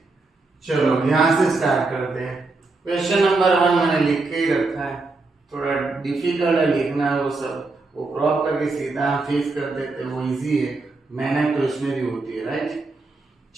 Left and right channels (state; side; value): quieter; left; 3.5 dB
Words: चलो यहाँ से स्टार्ट करते हैं। क्वेश्चन नंबर 1 मैंने लिख के ही रखा है, थोड़ा डिफिकल्ट है लिखना, वो सब वो क्रॉप करके सीधा फेस कर देते हैं, वो इजी है, मेहनत तो इसमें भी होती है, राइट।